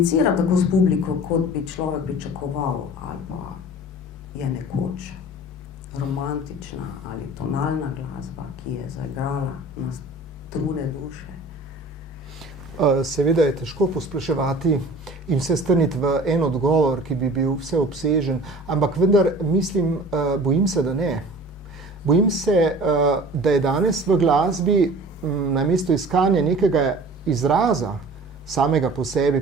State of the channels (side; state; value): both; normal; correlation 0.43